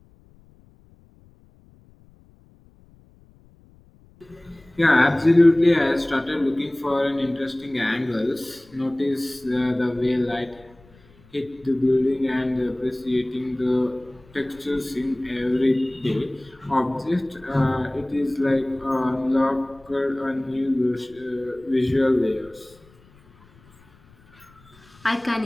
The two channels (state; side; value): noise; left; rumble, 28 dB below the sound